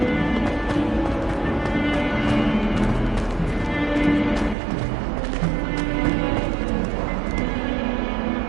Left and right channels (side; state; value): left; drops out; at 4.5 s